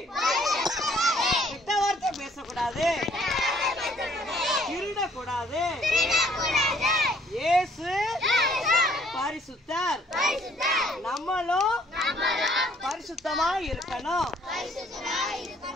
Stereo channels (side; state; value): both; normal; correlation 0.62